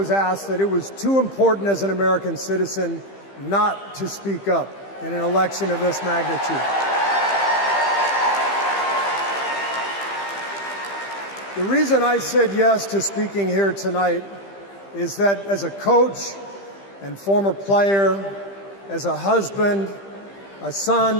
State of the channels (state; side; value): late; right; 15 ms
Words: asked that it was too important as an American citizen not to speak up in an election of this magnitude. The reason I said yes to speaking here tonight is that as a coach and former player, as a husband, a